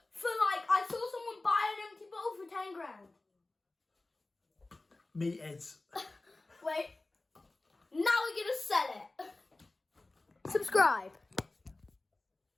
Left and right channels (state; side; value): quieter; right; 3.1 dB